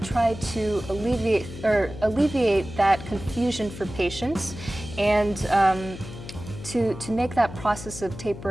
try to alleviate that confusion for patients and to make that process of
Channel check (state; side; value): noise; left; hum, 12 dB below the sound